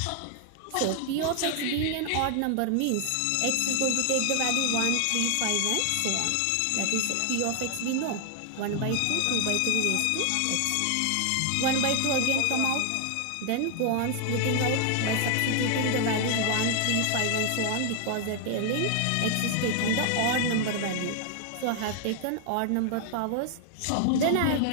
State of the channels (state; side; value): different; both; correlation 0.00